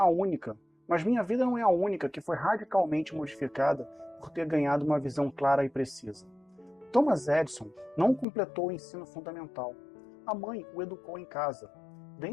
única que foi radicalmente modificada por ter ganhado uma visão clara e precisa. Thomas Edison não completou o ensino fundamental. A mãe o educou em casa.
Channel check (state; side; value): drops out; right; at 8.2 s